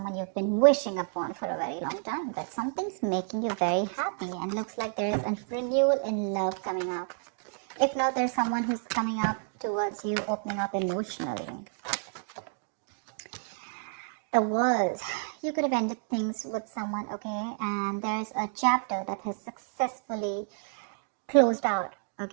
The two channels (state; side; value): silent; left; 58 dB below the other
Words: you've been wishing upon for a very long time. But something's making you very happy and looks like there is a renewal in love coming up. If not, there's someone who's coming up towards you, opening up emotionally. The world. You could have ended things with someone, okay? And there's a chapter that has successfully closed out,